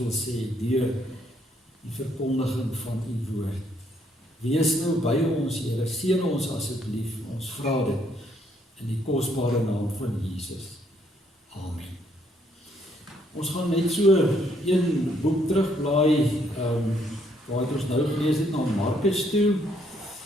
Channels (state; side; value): normal; both; correlation 0.70